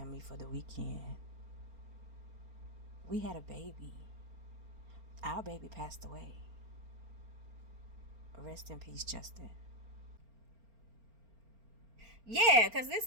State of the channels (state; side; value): late; left; 4.4 ms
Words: for the weekend, we had a baby. Our baby passed away. Rest in peace, Justin. Yeah, because